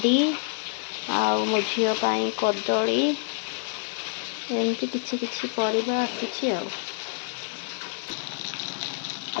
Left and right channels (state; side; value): silent; right; digital silence